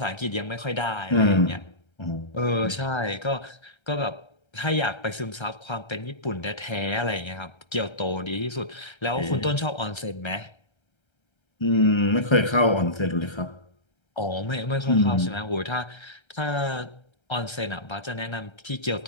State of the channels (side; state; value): right; late; 1.3 ms